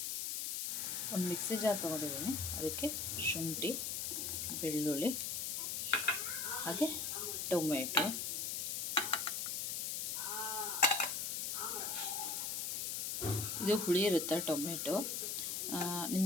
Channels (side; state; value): left; noise; hiss, 1 dB below the sound